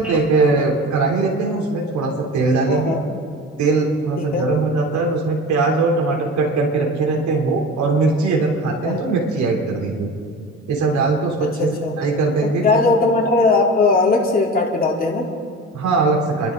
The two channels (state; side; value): normal; both; correlation 0.33